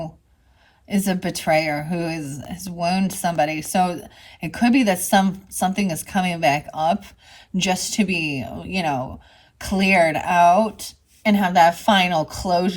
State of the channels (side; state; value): both; identical; correlation 1.00